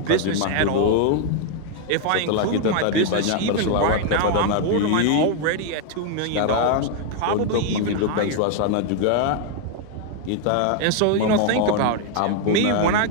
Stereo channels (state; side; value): different; both; correlation 0.00